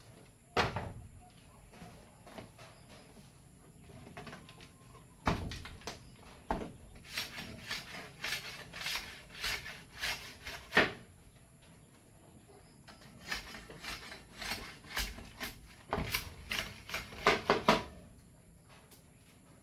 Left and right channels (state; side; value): identical; both; correlation 1.00